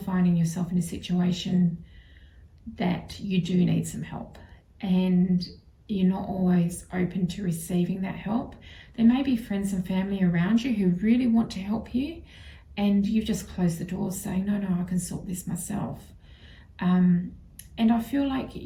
finding yourself in a situation that you do need some help, and you're not always open to receiving that help. There may be friends and family around you who really want to help you, and you've just closed the door saying, no, I can sort this myself. And I feel like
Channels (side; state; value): both; identical; correlation 1.00